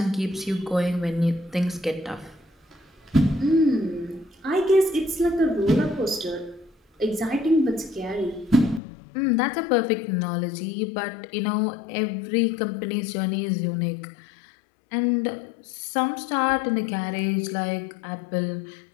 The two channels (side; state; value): right; drops out; at 8.8 s